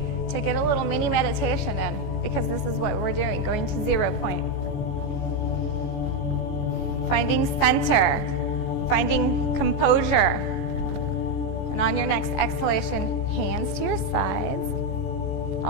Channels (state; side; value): late; right; 14 ms